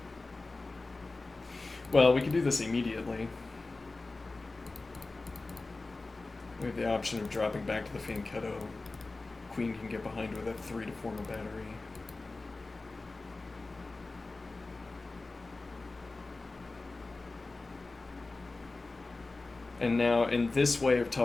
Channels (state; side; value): quieter; right; 3.4 dB